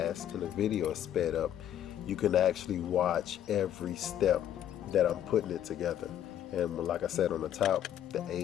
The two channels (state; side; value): quieter; right; 10.7 dB